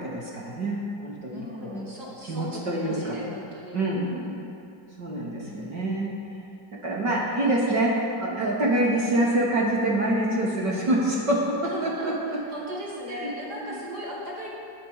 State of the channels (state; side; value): late; left; 5.3 ms